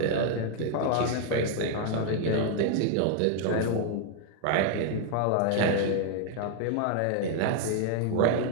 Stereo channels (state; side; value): different; both; correlation 0.00